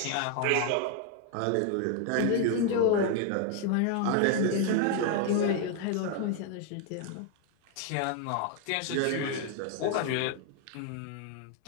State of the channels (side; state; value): both; different; correlation 0.00